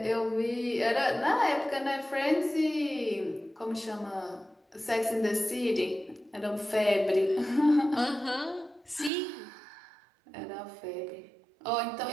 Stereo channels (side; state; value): left; drops out; at 9.1 s